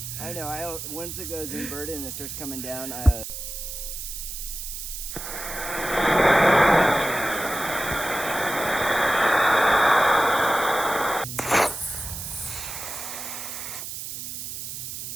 I know. Once it goes inverted and it starts coming down,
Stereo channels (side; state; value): right; noise; hiss, 7 dB below the sound